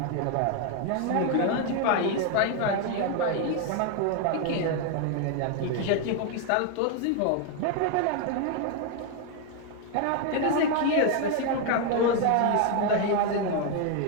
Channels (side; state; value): both; different; correlation 0.01